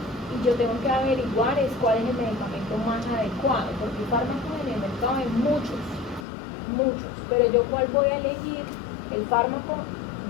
yo tengo que averiguar cuál es el medicamento más adecuado, porque fármacos en el mercado hay muchos, pero yo cuál voy a elegir, el fármaco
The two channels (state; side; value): drops out; right; at 6.2 s